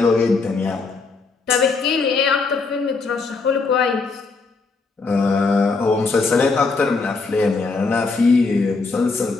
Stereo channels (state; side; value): quieter; right; 4.2 dB